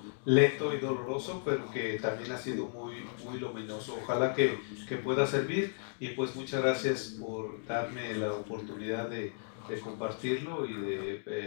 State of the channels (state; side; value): silent; right; digital silence